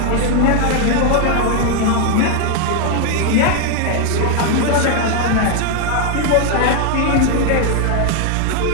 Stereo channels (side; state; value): both; different; correlation 0.01